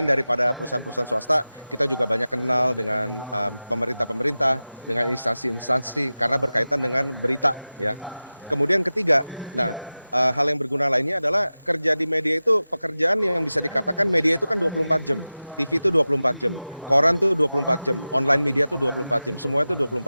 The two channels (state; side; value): inverted; both; correlation -0.96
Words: daripada perusahaan-perusahaan swasta, kita juga banyak kenal dengan pemerintah-pemerintah, dengan instansi-instansi karena berkaitan dengan berita ya. Kemudian ketiga, hal yang berguna lainnya adalah kerja di media itu pekerjaan yang bisa dikatakan media itu kan 24 jam. TV itu 24 jam, koran tuh 24 jam, online media tuh 24 jam, semua itu